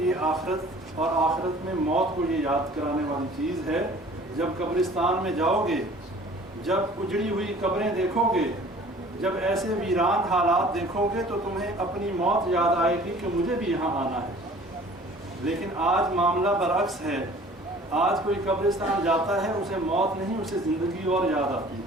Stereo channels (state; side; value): normal; both; correlation 0.49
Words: آخرت اور آخرت میں موت کو یہ یاد کرانے والی چیز ہے۔ جب قبرستان میں جاؤ گے، جب اجڑی ہوئی قبریں دیکھو گے، جب ایسے ویران حالات دیکھو گے، تو تمہیں اپنی موت یاد آئے گی کہ مجھے بھی یہاں آنا ہے۔ لیکن آج معاملہ برعکس ہے، آج کوئی قبرستان جاتا ہے، اسے موت نہیں، اسے زندگی اور یاد آتی